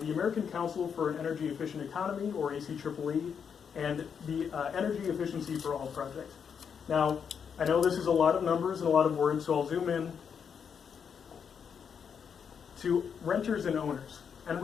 American Council for an Energy Efficient Economy, or ACEEE, and the Energy Efficiency for All project. Now, I know this is a lot of numbers and a lot of words, so I'll zoom in to renters and owners. And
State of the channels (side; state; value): right; quieter; 7.0 dB